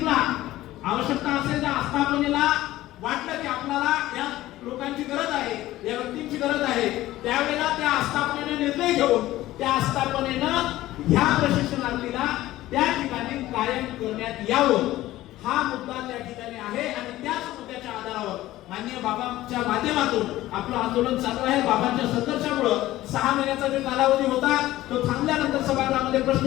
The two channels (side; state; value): right; quieter; 15.8 dB